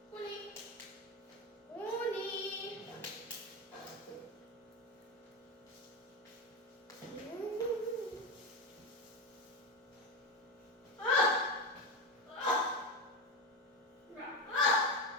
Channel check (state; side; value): normal; both; correlation 0.16